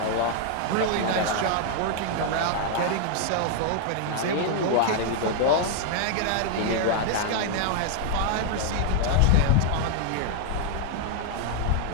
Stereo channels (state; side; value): different; both; correlation 0.00